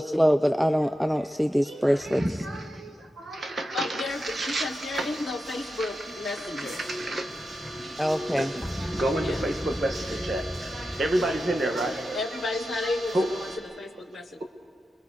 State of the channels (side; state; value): both; normal; correlation 0.90